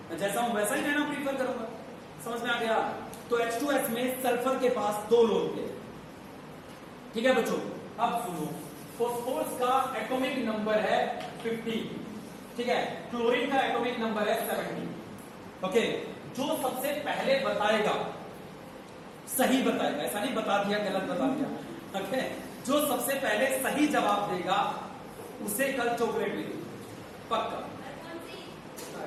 मैं जैसा हूं वैसा ही रहना प्रीफर करूंगा। समझ में आ गया? तो H2S में सल्फर के पास 2 लोन पेयर। ठीक है बच्चों, अब सुनो, फॉस्फोरस का एटॉमिक नंबर है 50। ठीक है, क्लोरीन का एटॉमिक नंबर है 70। ओके, जो सबसे पहले बताएगा सही बताएगा, ऐसा नहीं बता दिया गलत बता दिया, ओके, जो सबसे पहले सही जवाब देगा उसे कल चॉकलेट मिलेगी पक्का।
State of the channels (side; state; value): both; identical; correlation 1.00